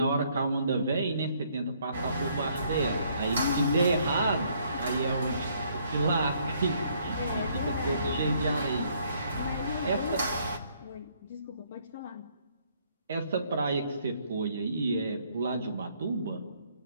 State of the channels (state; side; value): inverted; both; correlation -0.67